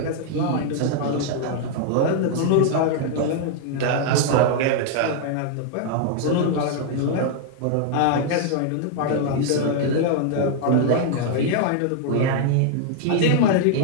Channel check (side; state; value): both; different; correlation 0.00